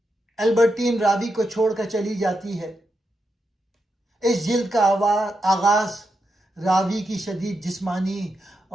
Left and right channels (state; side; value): normal; both; correlation 0.85